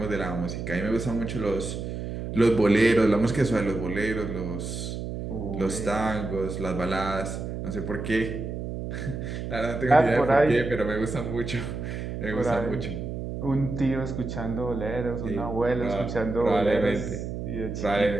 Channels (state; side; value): noise; right; hum, 6 dB below the sound